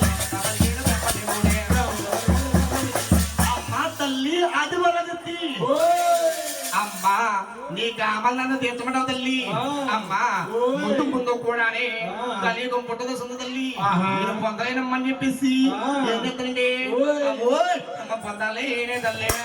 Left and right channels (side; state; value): both; identical; correlation 1.00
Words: నీ కామల్ నన్ను తీర్చమంటావు తల్లి అమ్మా ముందు ముందు కూడానే కలియుగం పుట్టదు సుంద తల్లి నేను పొందలేనమ్మని చెప్పేసి ఏం చెప్తానండి అమ్మ పొందాలేనే తల్లి